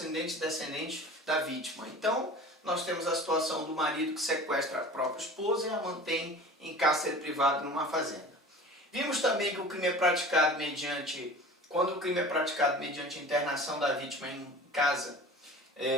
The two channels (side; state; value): both; normal; correlation 0.40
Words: e descendente da vítima. Então, nós temos a situação do marido que sequestra a própria esposa e a mantém em cárcere privado numa fazenda. Vimos também que o crime é praticado quando o crime é praticado mediante internação da vítima em casa,